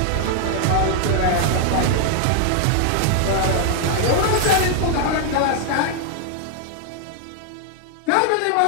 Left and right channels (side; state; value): both; different; correlation 0.00